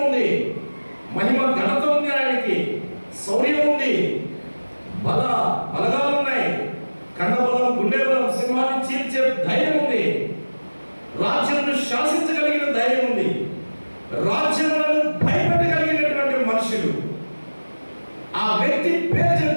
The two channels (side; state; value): both; inverted; correlation -1.00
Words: ఉంది, మహిమ ఘనత ఉంది, ఆయనకి శౌర్యం ఉంది, బలగాలు ఉన్నాయి, కండబలం, గుండె బలం, సింహాన్ని చీల్చే ధైర్యం ఉంది, రాజ్యమును శాసించగలిగిన ధైర్యం ఉంది, రాజ్యములను భయపెట్టగలిగినటువంటి మనుషులు. ఆ వ్యక్తి పేరు